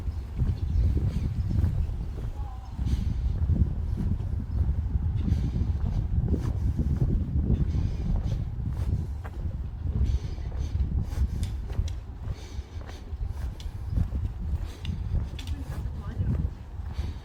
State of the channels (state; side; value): identical; both; correlation 1.00